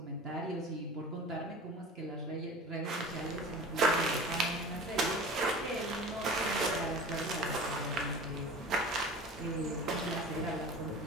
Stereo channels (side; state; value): both; normal; correlation 0.38